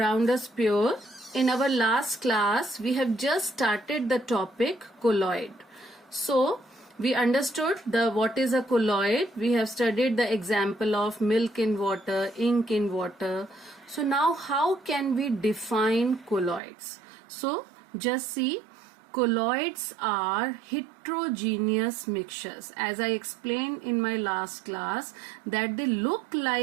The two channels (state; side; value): drops out; left; at 16.6 s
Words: us pure. In our last class we have just started the topic colloid. So we understood what is a colloid. We have studied the example of milk in water, ink in water. So now how can we define colloids? So just see, colloids are heterogeneous mixtures. As I explained in my last class that they look